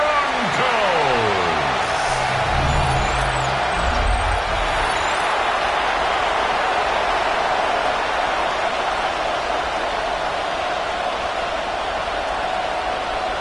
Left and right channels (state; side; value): identical; both; correlation 1.00